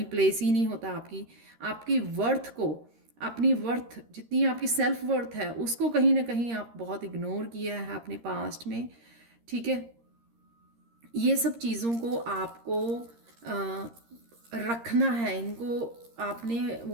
प्लेस ही नहीं होता आपकी वर्थ को, अपनी वर्थ जितनी आपकी सेल्फ वर्थ है उसको कहीं ना कहीं आप बहुत इग्नोर किया है अपने पास्ट में, ठीक है। ये सब चीज़ों को आपको रखना है, इनको आपने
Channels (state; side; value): late; left; 13 ms